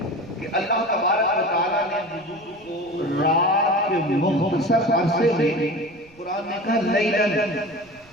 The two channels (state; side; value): noise; right; rumble, 28 dB below the sound